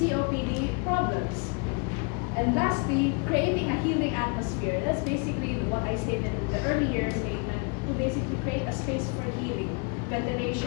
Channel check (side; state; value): right; quieter; 33.7 dB